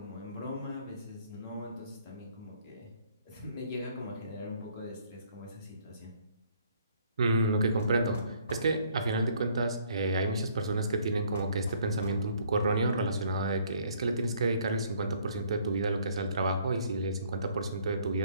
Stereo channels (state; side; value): inverted; both; correlation -0.63